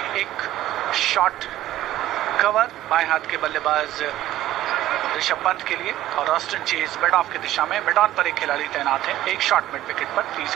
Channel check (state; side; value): quieter; left; 14.1 dB